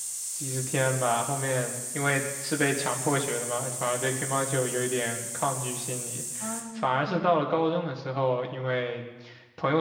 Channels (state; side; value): identical; both; correlation 1.00